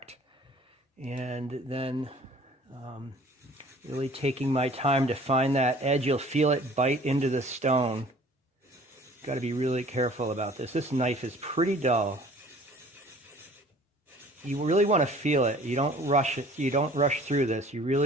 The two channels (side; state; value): both; normal; correlation 0.50